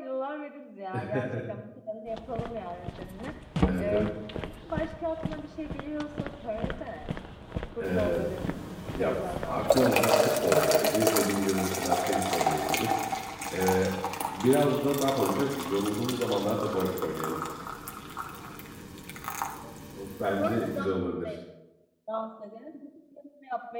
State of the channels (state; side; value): identical; both; correlation 1.00